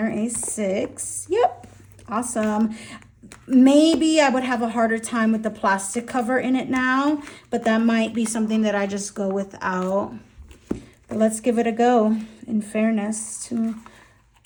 A6. Yep, awesome. Maybe I would have a harder time with the plastic cover in it now, but that might be something that I just go without. But let's give it a go, in fairness to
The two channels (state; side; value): identical; both; correlation 1.00